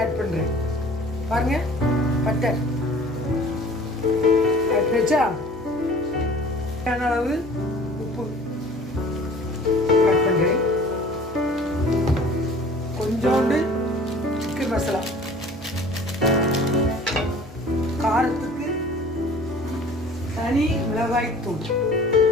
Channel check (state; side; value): normal; both; correlation 0.48